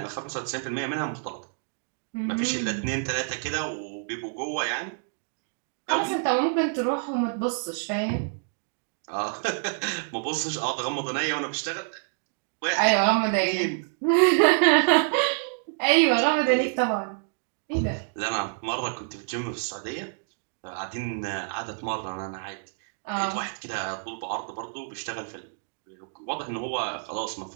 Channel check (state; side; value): silent; left; digital silence